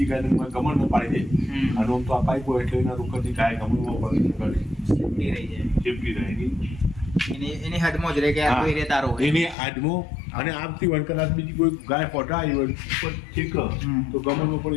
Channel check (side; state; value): right; drops out; at 9.6 s